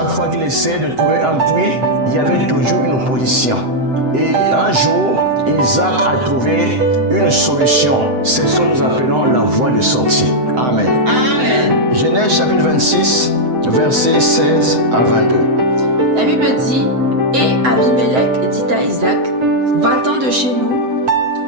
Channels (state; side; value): late; left; 7.9 ms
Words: fois qu'il essayait de trouver un puits, il y avait toujours une opposition. Et un jour, Isaac a trouvé une solution. C'est ce que nous appelons la voie de sortie. Amen. Amen. Genèse chapitre 26, versets 16 à 22. La Bible dit, et Abimelech dit à Isaac, va-t'en de chez nous,